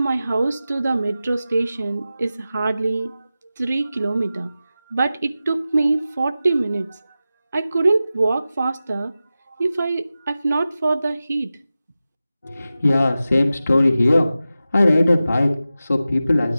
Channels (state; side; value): inverted; both; correlation -0.94